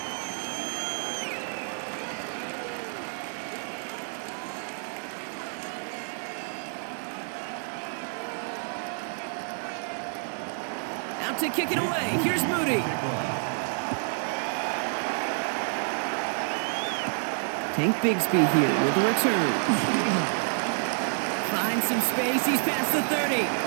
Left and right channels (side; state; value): left; silent; 59 dB below the other